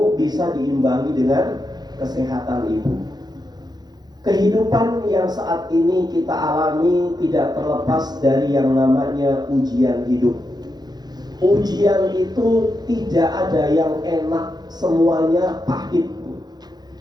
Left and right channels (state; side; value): late; left; 0.20 ms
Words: bisa diimbangi dengan kesehatan ibu. Kehidupan yang saat ini kita alami tidak terlepas dari yang namanya ujian hidup. Ujian itu tidak ada yang enak, semuanya pahit.